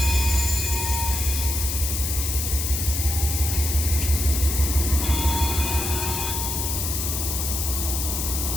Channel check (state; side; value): noise; left; hiss, 2 dB below the sound